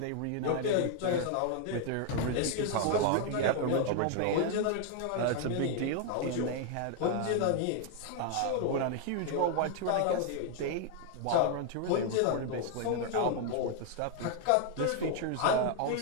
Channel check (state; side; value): different; both; correlation 0.00